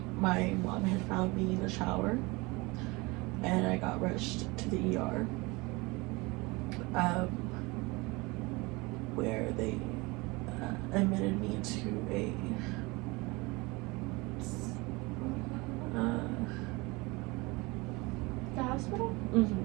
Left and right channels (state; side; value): quieter; left; 24.7 dB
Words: my mom had found me in the shower, and I got rushed to the ER, where they admitted me to a The hospital?